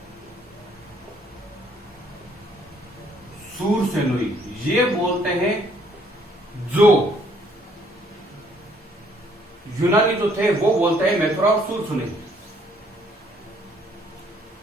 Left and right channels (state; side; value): normal; both; correlation 0.64